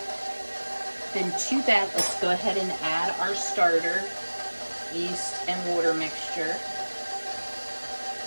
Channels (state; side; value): inverted; both; correlation -1.00